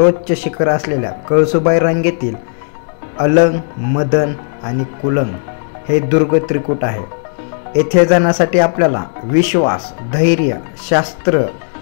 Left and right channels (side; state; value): right; silent; digital silence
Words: शिखर असलेल्या कळसुबाई रांगेतील अलंग, मदन आणि कुलंग हे दुर्ग त्रिकूट आहे. येथे जाण्यासाठी आपल्याला विश्वास, धैर्य, शास्त्र,